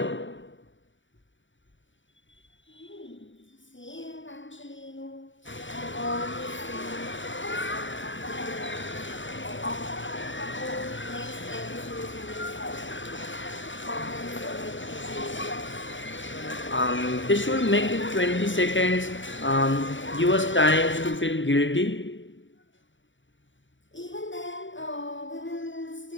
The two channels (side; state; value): right; late; 0.55 ms